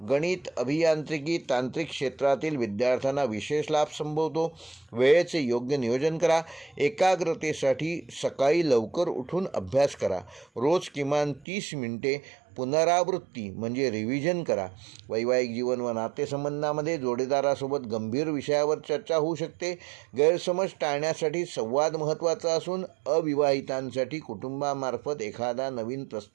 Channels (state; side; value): drops out; left; at 11.5 s